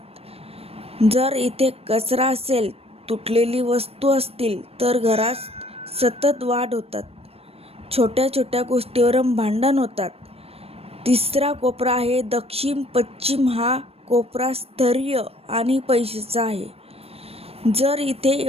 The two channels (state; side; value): late; left; 0.28 ms